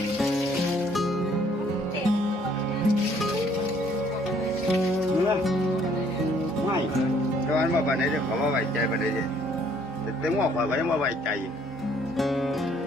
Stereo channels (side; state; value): both; normal; correlation 0.62